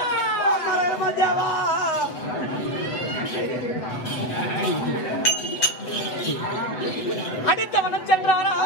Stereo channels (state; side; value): late; right; 8.0 ms